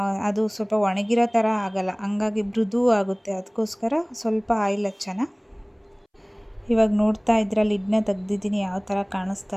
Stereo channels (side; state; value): both; identical; correlation 1.00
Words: ಅದು ಸ್ವಲ್ಪ ಒಣಗಿರೋ ಥರ ಆಗಲ್ಲ, ಹಂಗಾಗಿ ಮೃದು ಆಗುತ್ತೆ. ಅದಕ್ಕೋಸ್ಕರ ಸ್ವಲ್ಪ ಆಯಿಲ್ ಹಚ್ಚೋಣ. ಇವಾಗ ನೋಡ್ತಾ ಇದ್ರೆ ಲಿಡ್ನ ತೆಗ್ದಿದ್ದೀನಿ, ಯಾವ ಥರ